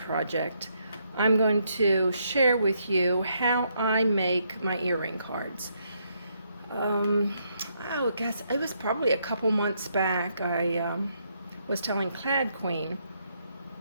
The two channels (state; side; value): inverted; both; correlation -0.75